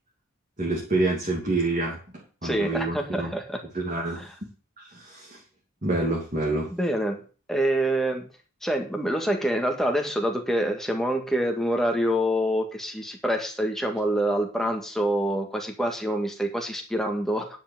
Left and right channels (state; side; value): normal; both; correlation 0.73